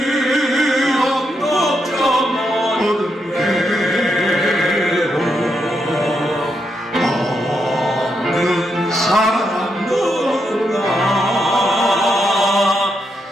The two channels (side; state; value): both; normal; correlation 0.82